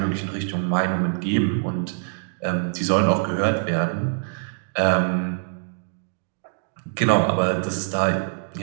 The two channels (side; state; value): left; silent; digital silence